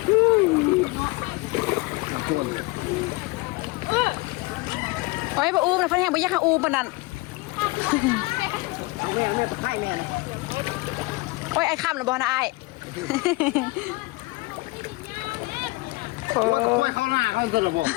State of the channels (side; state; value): right; quieter; 23.3 dB